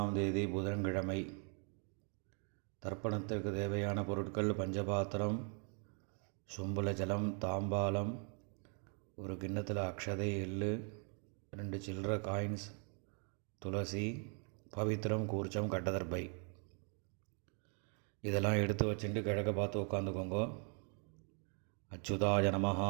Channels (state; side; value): quieter; left; 39.8 dB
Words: தேதி புதன்கிழமை. தர்ப்பணத்திற்கு தேவையான பொருட்கள்: பஞ்சபாத்திரம், சொம்புல ஜலம், தாம்பாலம், ஒரு கிண்ணத்தில் அக்ஷதை, எள்ளு, 2 சில்லற காயின்ஸ், துளசி, பவித்திரம், கூர்ச்சம், கட்டதர்பை. இதெல்லாம் எடுத்து வச்சுட்டு கிழக்க பார்த்து உட்காந்துக்கோங்க. அச்சுதாய நமஹ,